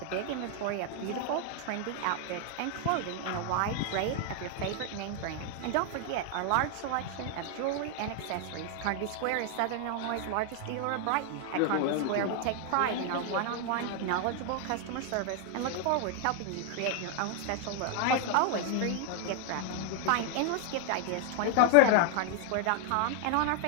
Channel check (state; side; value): different; both; correlation 0.00